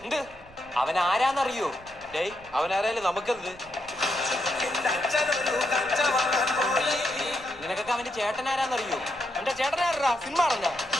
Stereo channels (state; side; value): noise; right; rumble, 23 dB below the sound